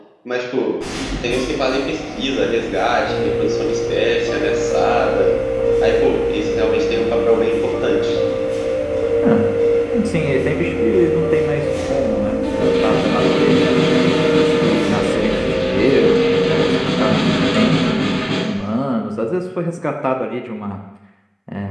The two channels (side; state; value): both; identical; correlation 1.00